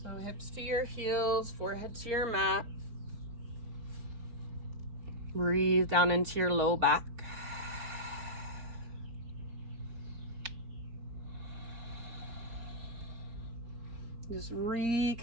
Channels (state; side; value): late; left; 4.4 ms